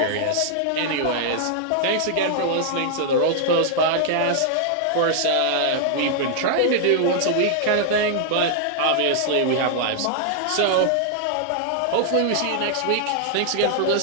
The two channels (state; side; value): different; both; correlation -0.01